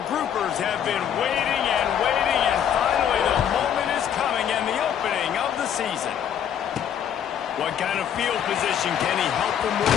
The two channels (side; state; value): right; quieter; 9.1 dB